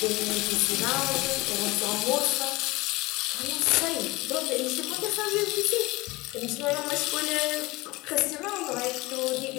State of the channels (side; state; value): right; quieter; 21.8 dB